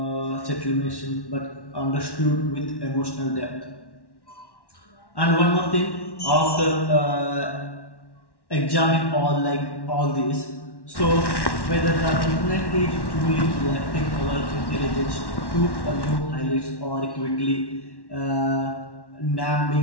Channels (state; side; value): late; right; 1.1 ms